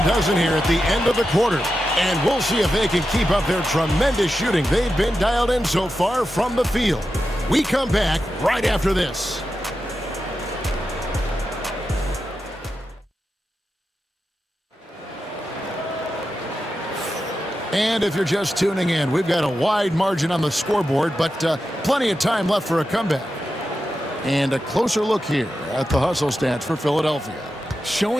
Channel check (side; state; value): both; normal; correlation 0.90